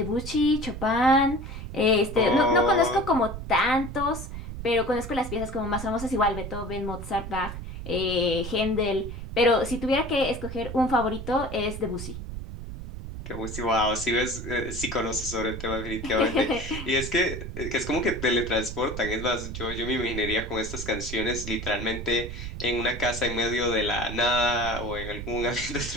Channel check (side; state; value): right; noise; rumble, 8 dB below the sound